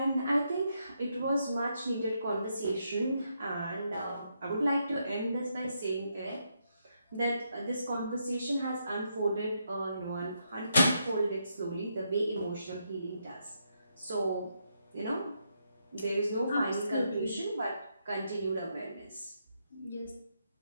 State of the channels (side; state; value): both; inverted; correlation -0.79